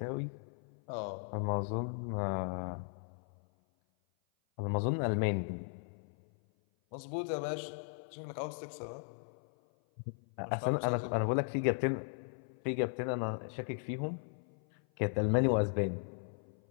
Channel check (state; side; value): silent; right; 53 dB below the other